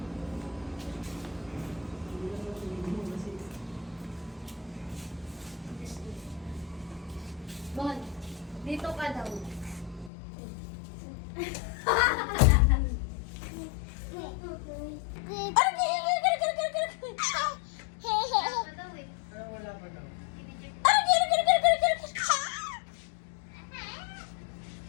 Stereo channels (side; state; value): right; drops out; at 10.1 s